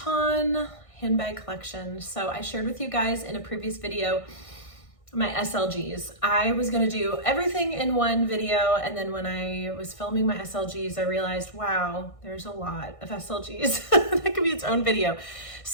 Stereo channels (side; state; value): right; late; 1.6 ms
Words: handbag collection. So I shared with you guys in a previous video my SLGs. I was going to do everything in one video, and then when I was filming my SLGs, I realized, wow, there's a lot of SLGs. That could be its own video.